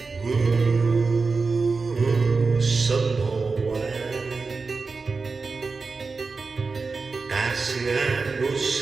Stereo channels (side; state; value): left; quieter; 4.3 dB